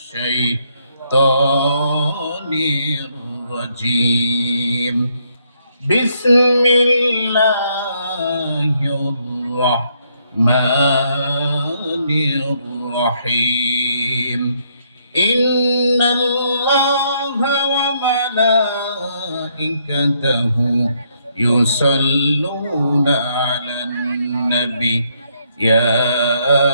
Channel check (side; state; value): both; inverted; correlation -0.73